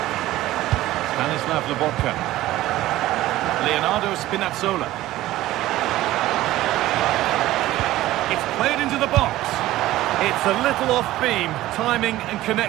Stanislav Lobotka. Leonardo Spinazzola. It's played into the box. It's a little off beam. Timing and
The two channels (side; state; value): left; quieter; 15.7 dB